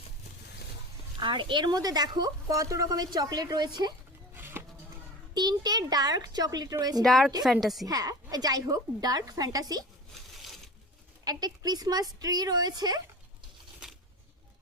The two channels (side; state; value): both; normal; correlation 0.34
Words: আর এর মধ্যে দেখো কত রকমের চকলেট রয়েছে, 3টে ডার্ক চকলেট রয়েছে, ডার্ক ফ্যান্টাসি। হ্যাঁ যাই হোক, ডার্ক ফ্যান্টাসি। একটা ক্রিসমাস ট্রি রয়েছে,